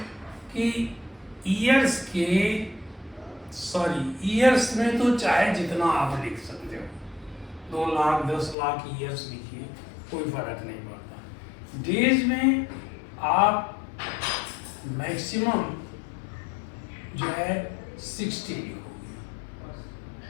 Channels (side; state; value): right; drops out; at 8.6 s